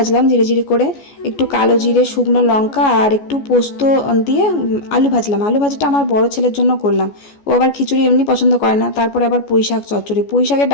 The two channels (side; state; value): right; late; 14 ms